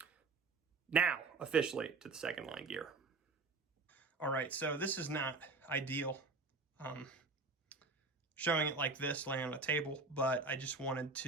Now, officially to the second line gear. All right, so this is not ideal, showing it like this, laying on a table, but I just wanted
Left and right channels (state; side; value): quieter; left; 3.8 dB